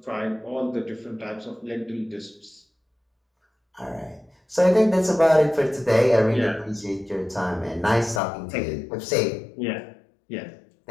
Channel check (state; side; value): drops out; right; at 8.2 s